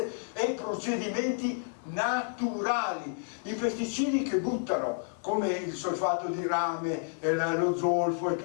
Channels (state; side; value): silent; right; 58 dB below the other